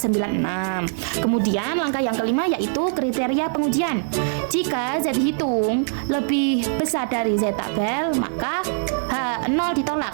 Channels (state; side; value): silent; left; digital silence